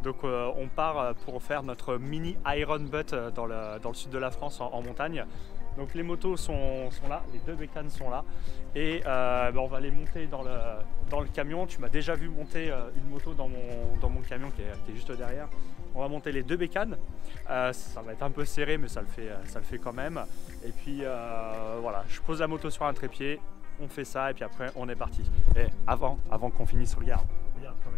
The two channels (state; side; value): quieter; right; 8.7 dB